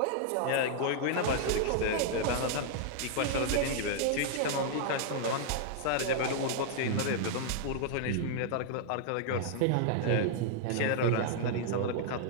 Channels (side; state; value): both; different; correlation -0.01